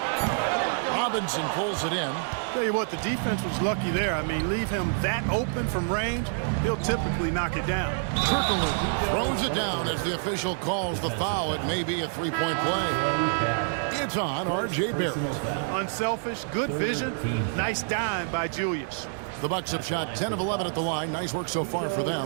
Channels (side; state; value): left; silent; digital silence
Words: Robinson pulls it in. Tell you what, the defense was lucky there. I mean, leave him that open from range, he'll typically knock it down. Turkoglu throws it down as the official calls the foul. It may be a 3-point play. It's on R.J. Barrett. Unselfish, good vision, nice dime by Julius. The Bucks have shot 10 of 11 at the line. Nice work so far for